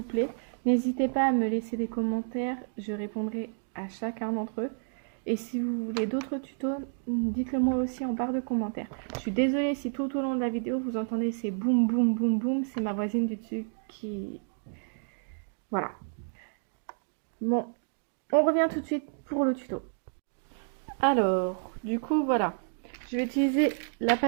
plaît. N'hésitez pas à me laisser des commentaires, je répondrai à chacun d'entre eux. Et si vous voulez d'autres tutos, dites-le moi aussi en barre de commentaires. Je suis désolée si tout au long de la vidéo vous entendez ces boum boum boum boum, c'est ma voisine du dessus qui... Voilà. Bon, on revient tout de suite pour le tuto. Alors, du coup, voilà. Je vais utiliser la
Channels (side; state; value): left; silent; digital silence